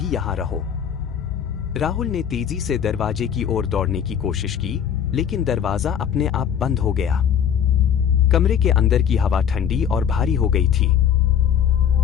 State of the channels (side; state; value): right; quieter; 8.6 dB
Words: यहां रहो। राहुल ने तेजी से दरवाजे की ओर दौड़ने की कोशिश की, लेकिन दरवाजा अपने आप बंद हो गया। कमरे के अंदर की हवा ठंडी और भारी हो गई थी।